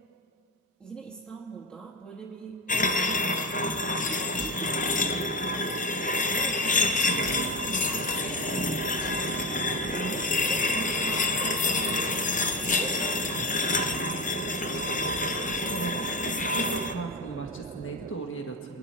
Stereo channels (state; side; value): normal; both; correlation 0.18